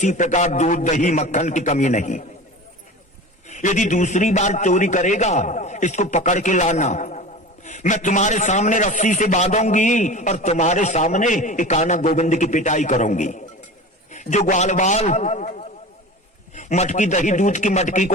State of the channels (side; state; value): both; normal; correlation 0.33